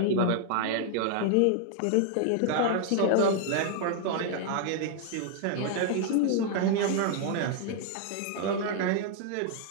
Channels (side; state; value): both; different; correlation 0.00